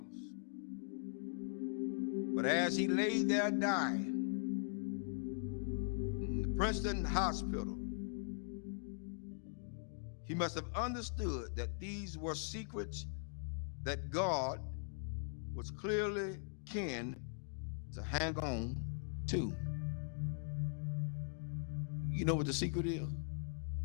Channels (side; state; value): right; silent; digital silence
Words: But as he lay there dying in the Princeton hospital, he must have understood that these were secrets that God was clearly keen to hang on to. You know what the secret is?